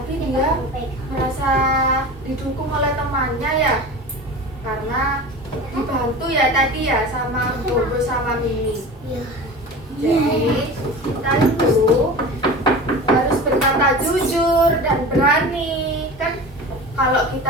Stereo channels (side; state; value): both; normal; correlation 0.33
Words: dia merasa didukung oleh temannya ya, karena dibantu ya tadi ya sama Bobo sama Mimi. Jadi kita itu harus berkata jujur dan berani. Kan kalau